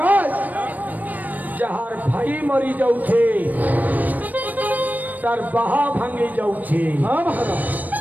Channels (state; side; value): late; left; 0.082 ms